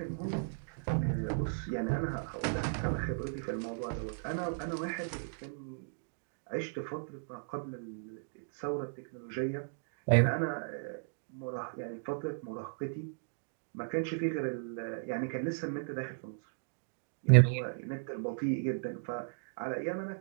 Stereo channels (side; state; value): left; silent; digital silence